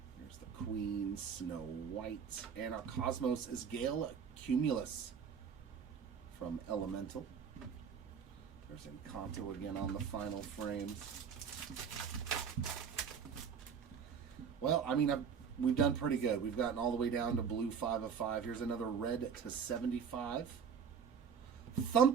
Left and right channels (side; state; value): left; quieter; 6.9 dB